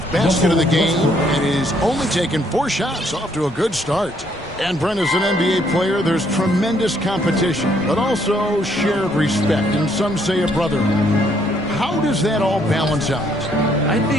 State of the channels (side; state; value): left; noise; rumble, 21 dB below the sound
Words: basket of the game and he's only taken 4 shots. Off to a good start. And Brent, as an NBA player, there's tremendous competition, but also shared respect, and some say a brotherhood. How does that all balance out? I